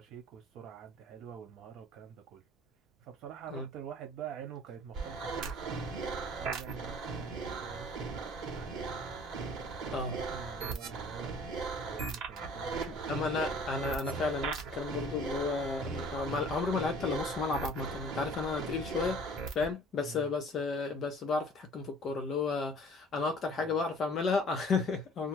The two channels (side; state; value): both; normal; correlation 0.50